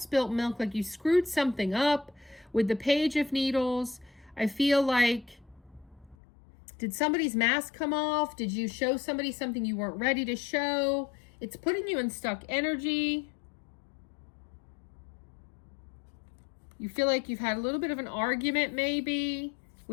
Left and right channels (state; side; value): drops out; right; at 6.2 s